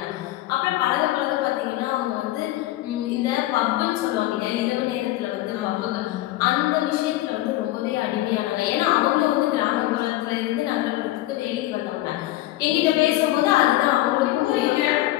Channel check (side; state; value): right; quieter; 16.2 dB